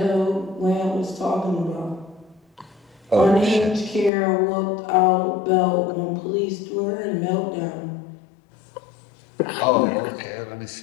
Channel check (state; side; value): drops out; right; at 4.1 s